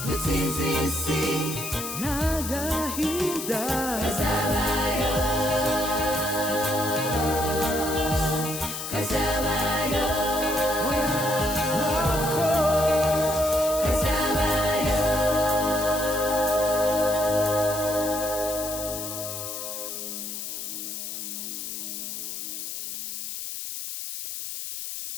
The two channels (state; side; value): noise; left; hiss, 6 dB below the sound